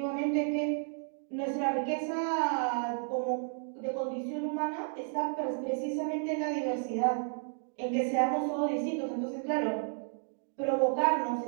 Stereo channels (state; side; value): silent; left; 56 dB below the other